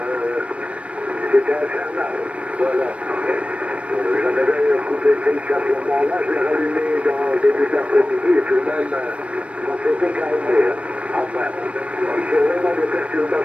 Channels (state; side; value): late; left; 0.062 ms